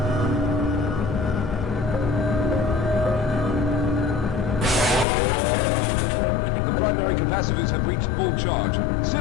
The primary capacitors have reached full charge.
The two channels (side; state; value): right; drops out; at 5.1 s